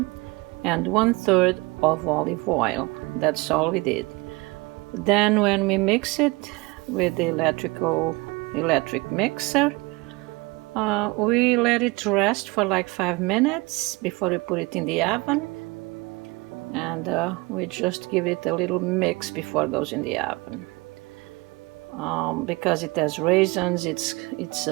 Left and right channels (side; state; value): left; quieter; 25.1 dB